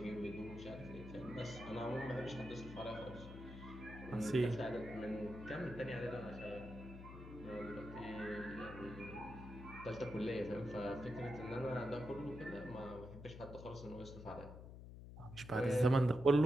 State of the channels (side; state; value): left; noise; hum, 12 dB below the sound